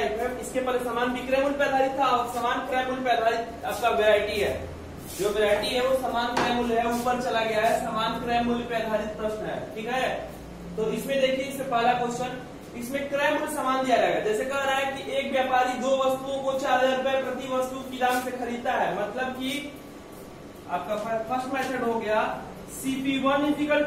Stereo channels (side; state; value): both; identical; correlation 1.00